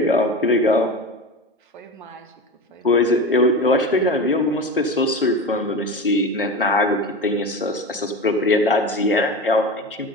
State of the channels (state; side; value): normal; both; correlation 0.27